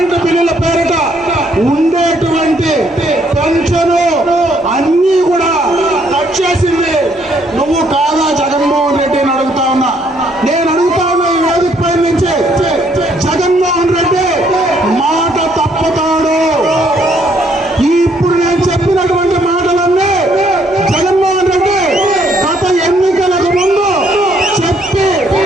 బిల్లుల పేరిట ఉండేటువంటి పెన్షను అన్నీ కూడా కట్ చేసింది నువ్వు కాదా జగన్మోహన్ రెడ్డి అని అడుగుతా ఉన్నా. నేను అడుగుతా ఉన్నా ఈ వేదిక పై నుంచి, జగన్మోహన్ రెడ్డి మాట తప్పుతాడు. ఇప్పుడు నేను చెప్పినటువంటి మాటలన్నీ జగన్మోహన్ రెడ్డి గత ఎన్నికలకు ముందు చెప్పి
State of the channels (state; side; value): normal; both; correlation 0.68